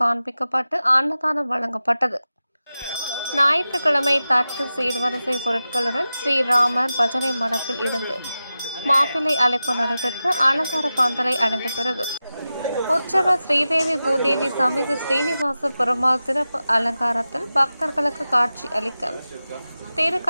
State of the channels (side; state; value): both; inverted; correlation -0.94